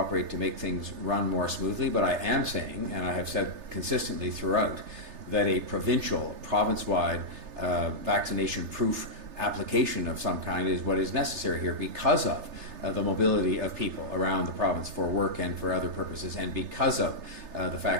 to make things run more smoothly, but I am saying, and I have said consistently throughout, that a province-wide vaccination proof application of some kind is what is necessary here because of the mobility of people around the province for work and for other purposes, and because of the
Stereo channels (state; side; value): late; left; 3.3 ms